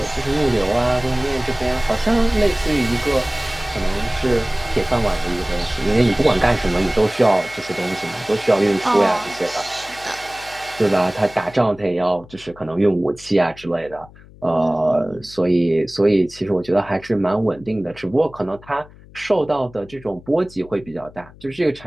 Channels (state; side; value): noise; left; hum, 22 dB below the sound